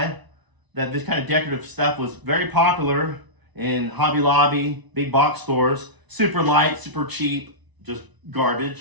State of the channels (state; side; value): late; left; 1.0 ms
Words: That this kind of decorative stuff was very popular in Hobby Lobby, big box stores. Super light, super cheap, just